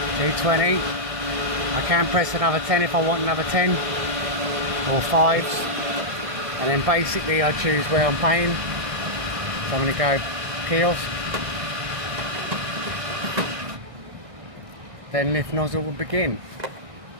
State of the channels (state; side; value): late; left; 1.6 ms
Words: G20. I can press another 10 if I want another 10, or 5s. And then basically I choose where I'm paying. So I'm going to go kiosk. Then lift nozzle will begin.